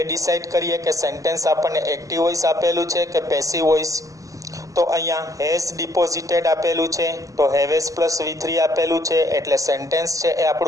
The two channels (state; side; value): late; left; 0.16 ms